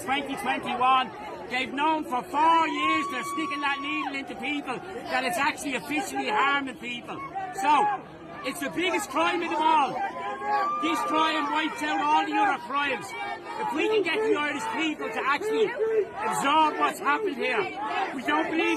They've known for 4 years they're sticking that needle into people, that it's actually officially harming people. So, it's the biggest crime of them all. This crime wipes out all the other crimes. If we can get the Irish people to actually absorb what's happened here, we don't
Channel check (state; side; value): identical; both; correlation 1.00